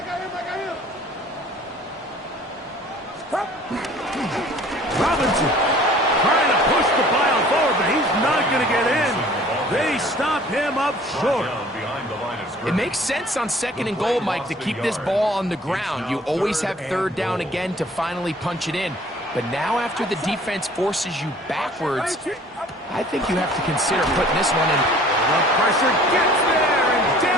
Robinson trying to push the pile forward, but he's not going to get in. They stop him up short. It makes sense on 2nd and goal, Mike, to keep this ball on the ground. You always have 3rd down again to finally punch it in. But now after the defense forces you backwards, I think you have to consider putting this one in. The pressure gets there, and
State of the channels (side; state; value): both; normal; correlation 0.51